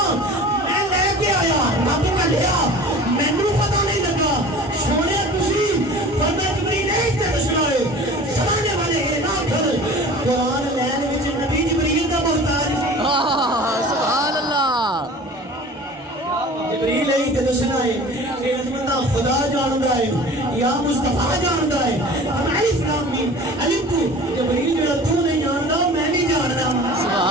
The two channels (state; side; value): normal; both; correlation 0.41